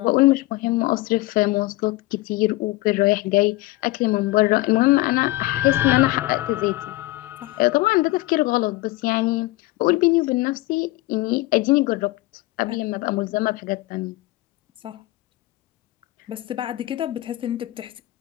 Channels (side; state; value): right; quieter; 19.2 dB